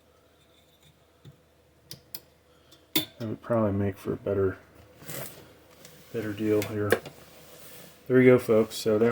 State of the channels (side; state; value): both; identical; correlation 1.00